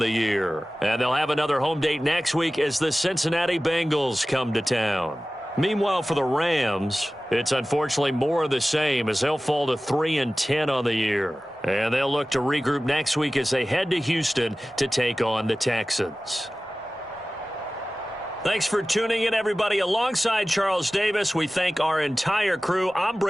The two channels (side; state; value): both; normal; correlation 0.97